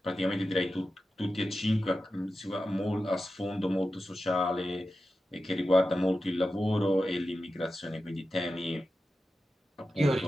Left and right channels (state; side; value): normal; both; correlation 0.92